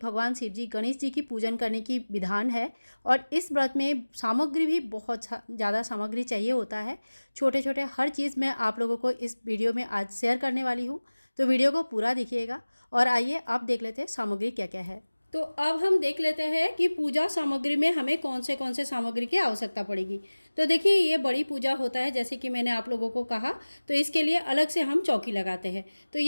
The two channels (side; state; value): both; inverted; correlation -1.00